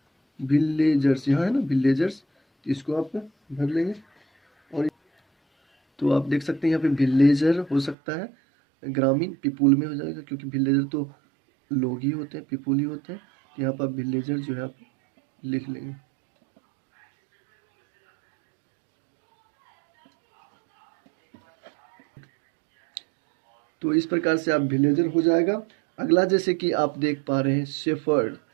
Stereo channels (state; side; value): drops out; left; at 8.0 s